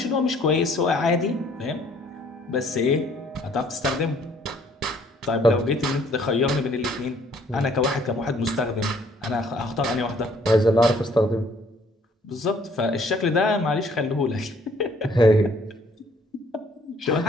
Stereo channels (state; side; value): normal; both; correlation 0.61